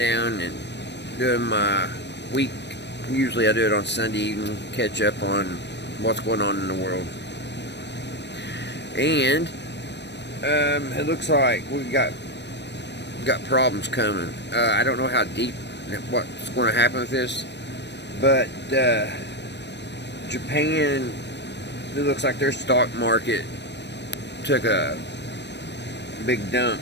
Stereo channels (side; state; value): right; late; 0.50 ms